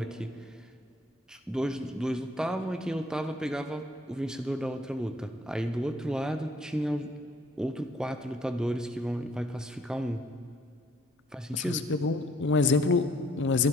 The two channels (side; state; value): both; normal; correlation 0.62